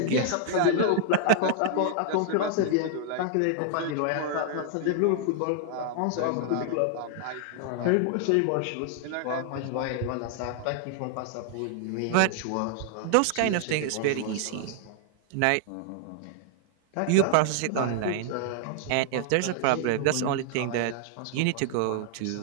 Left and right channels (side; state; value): both; different; correlation 0.00